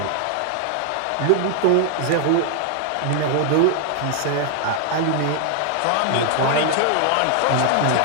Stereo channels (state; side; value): different; both; correlation 0.00